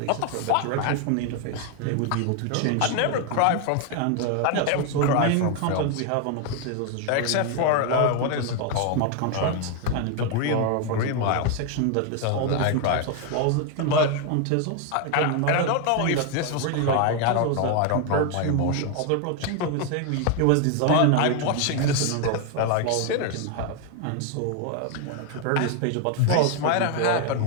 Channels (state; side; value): different; both; correlation 0.01